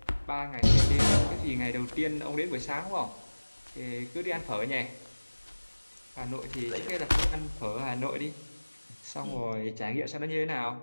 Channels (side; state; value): both; inverted; correlation -1.00